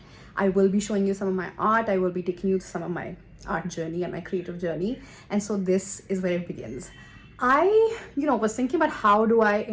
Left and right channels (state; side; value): identical; both; correlation 1.00